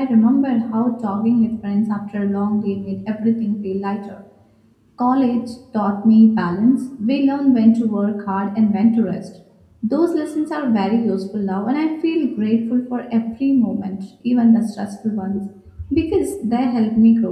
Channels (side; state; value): both; identical; correlation 1.00